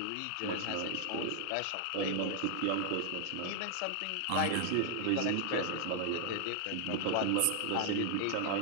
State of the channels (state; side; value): different; both; correlation 0.00